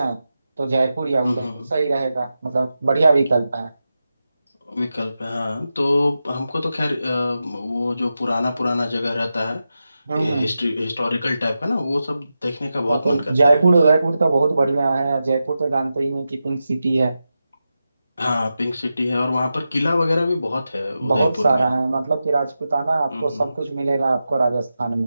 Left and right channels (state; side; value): inverted; both; correlation -0.91